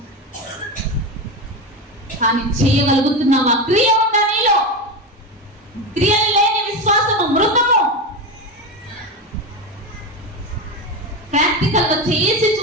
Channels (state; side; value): normal; both; correlation 0.18